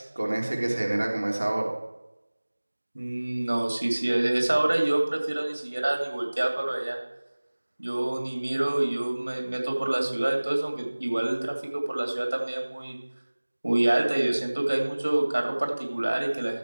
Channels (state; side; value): inverted; both; correlation -1.00